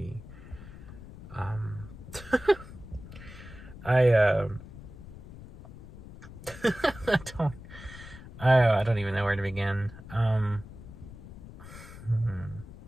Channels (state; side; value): noise; left; rumble, 15 dB below the sound